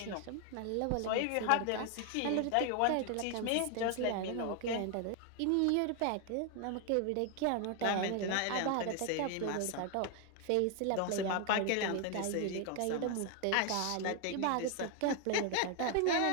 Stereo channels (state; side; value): different; both; correlation 0.00